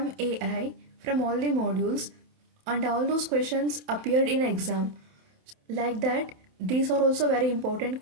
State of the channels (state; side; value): late; left; 27 ms